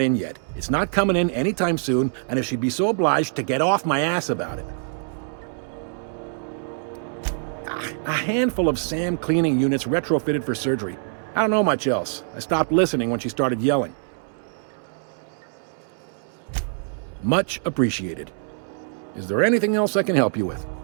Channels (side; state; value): left; silent; 62 dB below the other